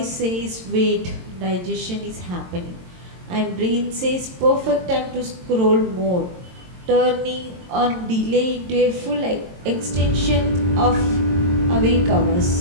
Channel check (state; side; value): late; left; 22 ms